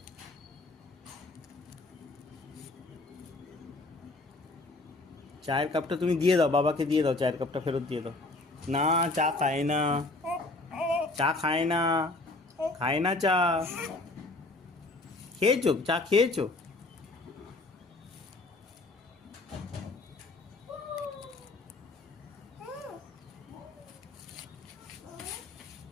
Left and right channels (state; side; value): quieter; right; 3.0 dB